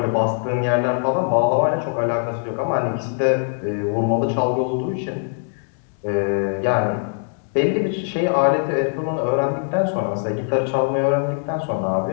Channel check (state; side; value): silent; right; digital silence